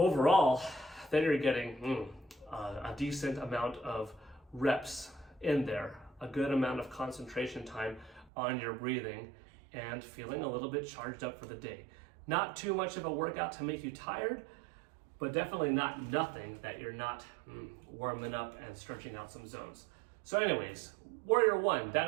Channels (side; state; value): left; drops out; at 8.3 s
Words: then you're getting a decent amount of reps in there, a good amount of concentration time on your breathing, and feeling a little bit charged up for the day. Not too much of a workout to make you tired, but definitely not nothing that you're not warming up and stretching out some zones. So anyways, Warrior 1,